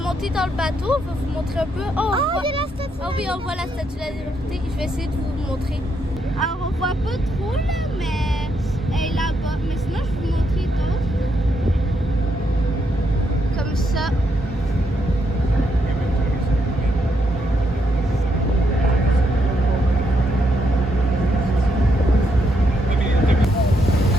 dans le bateau. On va vous montrer un peu. Il y a la statue. Ah oui, on voit la statue de la liberté. Je vais essayer de vous montrer. Alors, on voit pas trop là, mais elle est là-bas. Mais sinon, je vais vous montrer d'autres. Comme ça.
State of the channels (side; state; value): both; normal; correlation 0.78